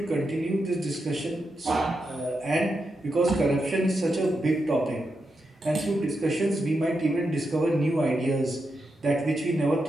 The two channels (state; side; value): normal; both; correlation 0.86